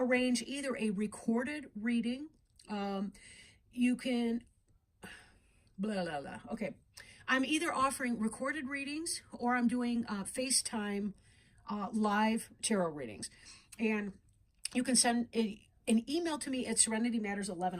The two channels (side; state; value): both; identical; correlation 1.00